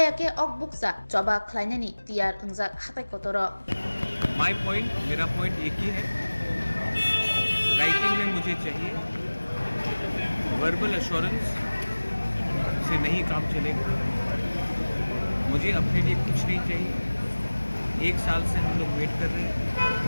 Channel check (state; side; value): inverted; both; correlation -1.00